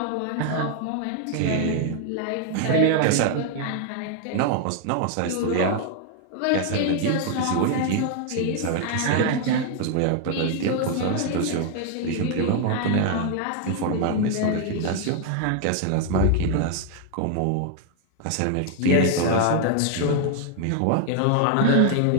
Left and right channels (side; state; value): both; different; correlation 0.00